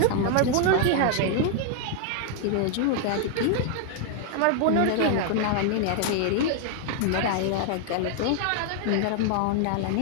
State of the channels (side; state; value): both; different; correlation 0.00